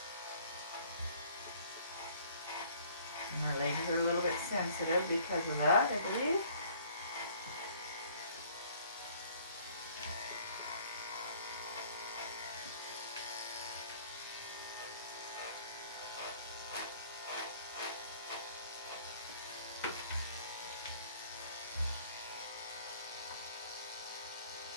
And her legs are a little bit sensitive because of that, I believe.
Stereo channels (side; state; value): both; inverted; correlation -0.57